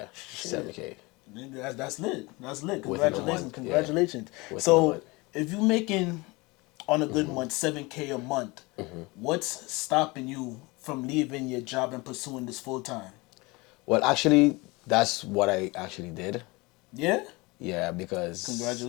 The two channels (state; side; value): quieter; right; 24.4 dB